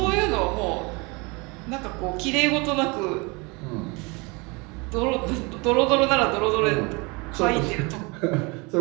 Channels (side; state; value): left; quieter; 27.8 dB